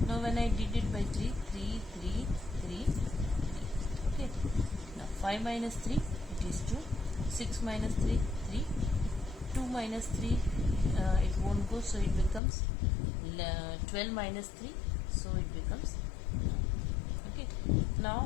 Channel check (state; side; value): drops out; right; at 12.4 s